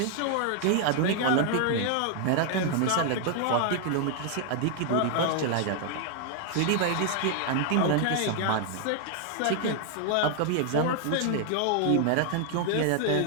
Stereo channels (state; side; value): different; both; correlation 0.00